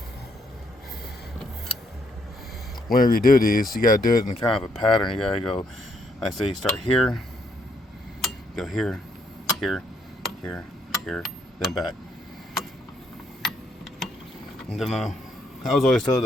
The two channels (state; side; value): normal; both; correlation 0.73